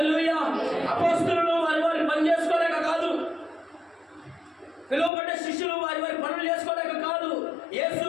అపోస్తలులు వారి పని చేసుకోలేక కాదు, పిలువబడ్డ శిష్యులు వారి పనులు చేసుకోలేక కాదు,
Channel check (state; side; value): drops out; right; at 5.1 s